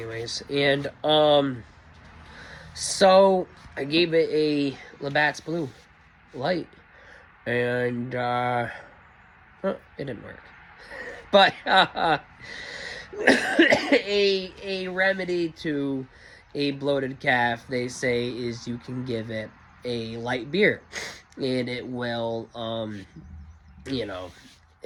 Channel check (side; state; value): both; identical; correlation 1.00